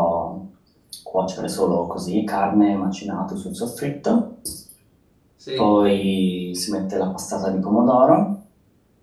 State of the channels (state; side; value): identical; both; correlation 1.00